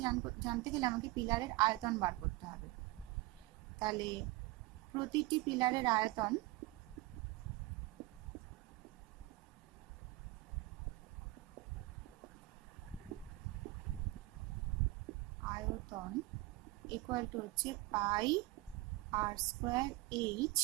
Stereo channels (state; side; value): quieter; left; 20.2 dB